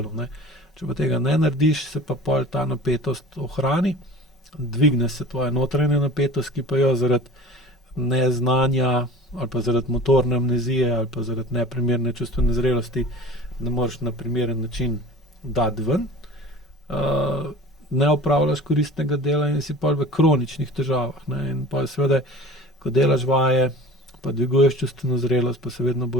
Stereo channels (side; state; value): both; normal; correlation 0.41